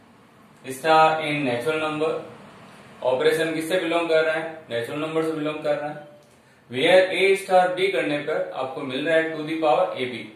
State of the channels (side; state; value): both; identical; correlation 1.00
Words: star in natural number. Operation किससे बिलोंग कर रहा है? नेचुरल नंबर से बिलोंग कर रहा है. वेयर ए स्टार बी करने पर आपको मिल रहा है to the power a b.